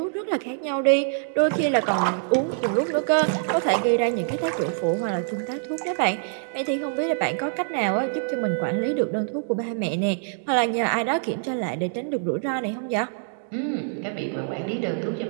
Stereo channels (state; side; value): silent; left; digital silence